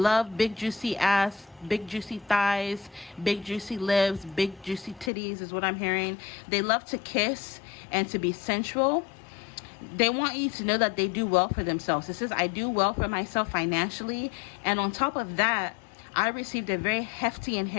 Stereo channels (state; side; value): drops out; right; at 5.1 s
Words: ass, big juicy thighs, big juicy lips, big juicy titties is what I'm hearing. They love to kiss and to be sensual. They want you to know that they do well for themselves. It says, I do well for myself financially, and on top of that, I received a very hefty